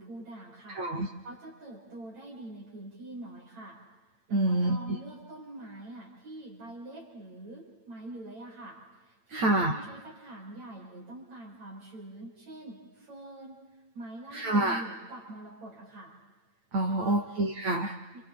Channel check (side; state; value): left; late; 8.9 ms